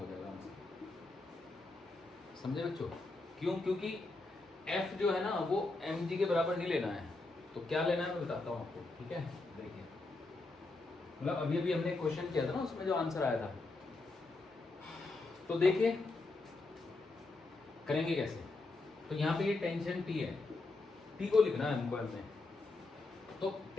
जाएगा आंसर। समझे बच्चों? क्यों? क्योंकि f जो है ना वो mg के बराबर नहीं लेना है। तो क्या लेना है मैं बताता हूँ आपको, ठीक है? देखिए, मतलब अभी अभी हमने क्वेश्चन किया था ना, उसमें जो आंसर आया था, तो देखिए करेंगे कैसे। तो यहाँ पे ये टेंशन T है, T को लिखना है हमको हमने, तो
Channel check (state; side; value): quieter; right; 3.3 dB